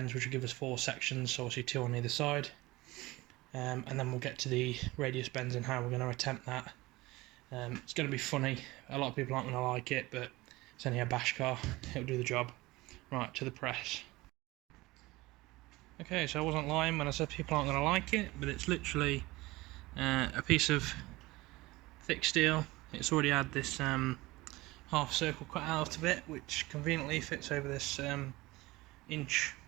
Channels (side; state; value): left; quieter; 20.4 dB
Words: which will give us 4 sections, so obviously 2 on either side. And then we'll get to the radius bends and how we're going to attempt that. It's going to be funny. A lot of people aren't going to like it, but it's only a bash car. It'll do the job. Right, to the press. Okay, so I wasn't lying when I said people aren't going to like it, but it's literally a piece of thick steel It's already had this half circle cut out of it, which conveniently fits over this inch